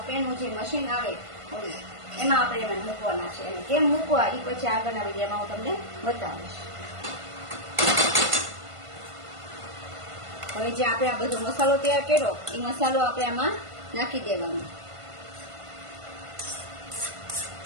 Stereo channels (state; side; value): late; left; 1.5 ms